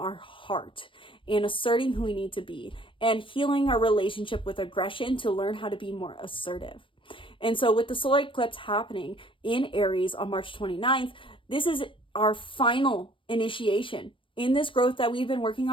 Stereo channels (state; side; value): late; right; 0.25 ms